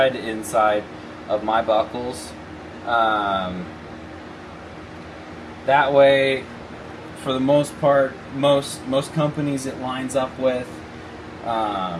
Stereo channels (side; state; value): both; identical; correlation 1.00